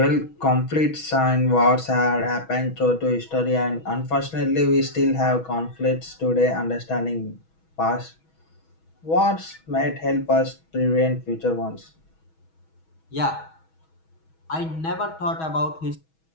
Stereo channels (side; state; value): right; late; 6.2 ms